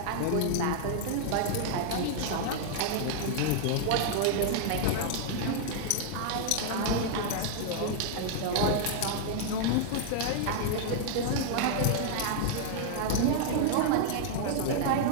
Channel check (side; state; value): both; different; correlation 0.00